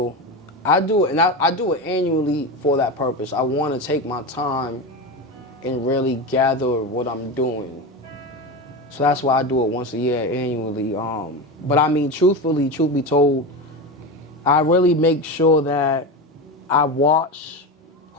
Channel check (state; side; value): normal; both; correlation 0.21